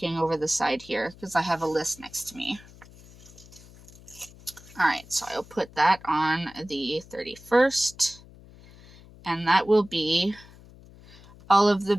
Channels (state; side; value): noise; left; hum, 22 dB below the sound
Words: over the side here because I have a list next to me. All right, so I'll put that on the 31st, and that will be all of the